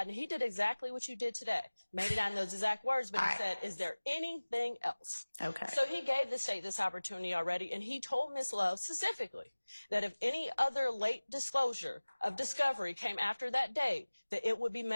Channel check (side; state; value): both; inverted; correlation -1.00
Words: and he did exactly what you did today. Maybe not in those exact words, but All he right. said, is there anything else? Okay. So he gave the state this opportunity already, and he told Ms. Love specifically that if any other late disclosure of discovery came after that date, that it would be